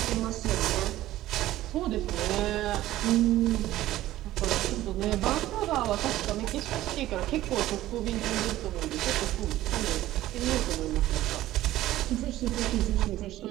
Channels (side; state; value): left; quieter; 14.9 dB